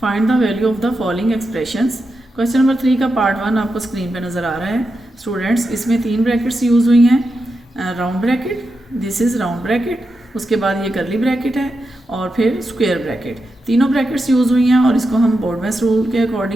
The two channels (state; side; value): normal; both; correlation 0.88